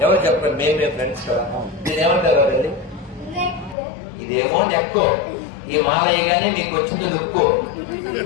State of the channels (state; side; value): drops out; right; at 3.8 s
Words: ఎవరు చెప్పండి మేమే ఫ్రెండ్స్ నేనేమంటారు వెళ్ళి ఇదేమో నెక్కు ఈ మాలయ్యగానే నీకు వచ్చింది లుక్కు